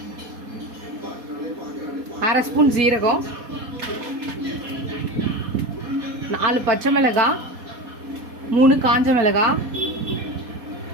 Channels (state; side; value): late; left; 4.2 ms